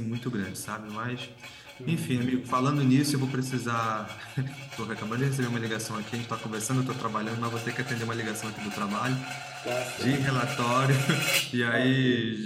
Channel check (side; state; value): both; identical; correlation 1.00